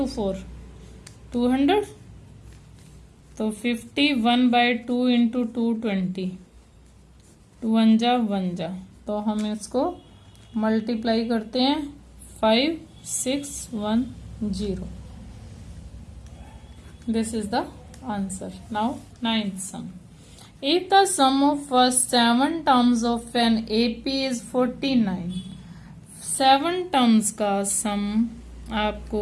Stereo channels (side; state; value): both; identical; correlation 1.00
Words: 4 200, तो 51/2 इंटू 220, 2 1 जा, तो हम इसको मल्टीप्लाई करते हैं 5610। This is the answer. Now 9th sum. If the sum of first 7 terms of an AP is 49, 7 terms का सम